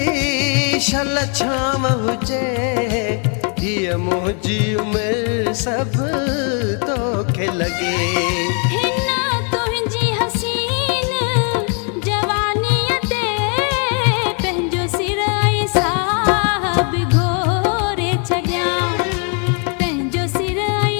शल छाम हुजे हीअ मुंहिंजी उमिरि सभु तोखे लॻे हिन तुंहिंजी हसीन जवानीअ ते पंहिंजो सिर ऐं साहब घोरे छॾियां पंहिंजो सिर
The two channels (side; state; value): right; quieter; 39.5 dB